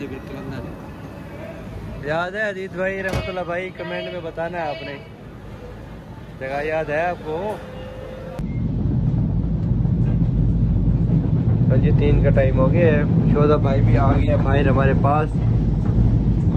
फिर कलंदर। याद है अदीद भाई, रहमतुल्लाह भाई, कमेंट में बताना है आपने, जगह याद है आपको? जी 3 का टाइम हो गया है, शोधा भाई भी आ गया बाहर हमारे पास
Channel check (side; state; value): both; identical; correlation 1.00